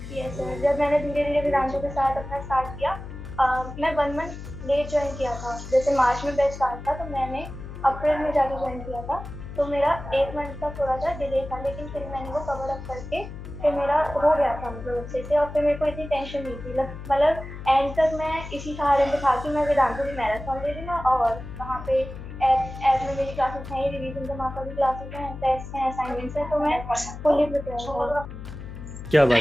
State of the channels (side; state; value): left; noise; hum, 11 dB below the sound